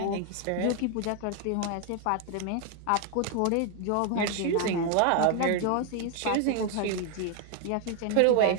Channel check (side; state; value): both; different; correlation 0.00